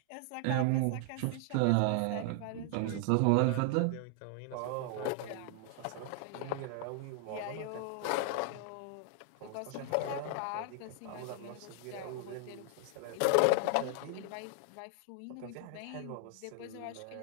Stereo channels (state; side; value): different; both; correlation 0.00